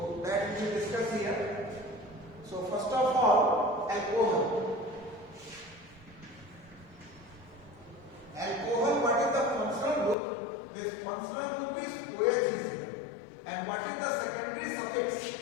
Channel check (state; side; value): drops out; right; at 10.2 s